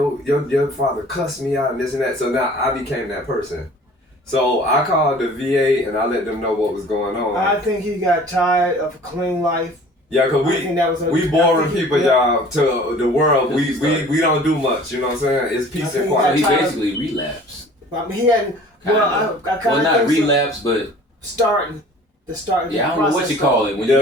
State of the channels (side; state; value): both; normal; correlation 0.48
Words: father cussed me out and this and that." So now I became that person. So I called the VA and I let them know what was going on. I think he got tired of a clean life. Yeah, cause we boring people, y'all, to the world. We don't do much. You know what I'm saying? It's peace and quiet. He basically relapsed. I mean, he hadn't. Not relapse, but. Starting. Yeah, I don't know what you call it when you